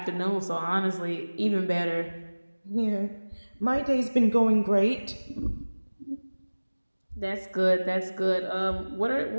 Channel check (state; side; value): inverted; both; correlation -1.00